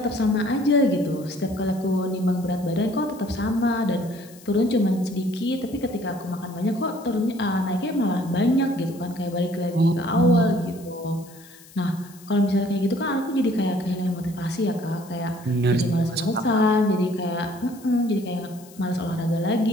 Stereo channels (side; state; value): left; noise; hiss, 22 dB below the sound